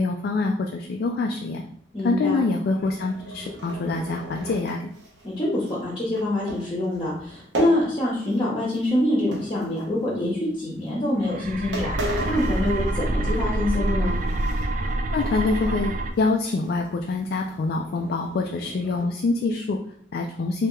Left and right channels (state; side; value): normal; both; correlation 0.65